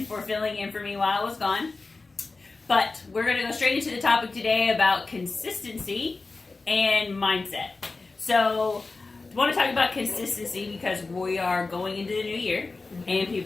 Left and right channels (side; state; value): right; quieter; 3.7 dB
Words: for filling in for me while I was gone. But we're going to go straight into the topic today about consistency and mindset. So, I want to talk about consistency because we are going into the new year and